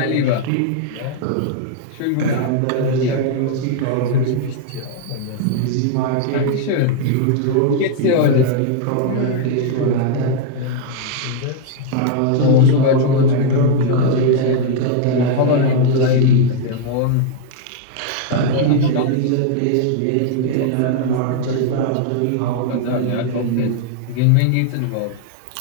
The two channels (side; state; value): both; different; correlation 0.00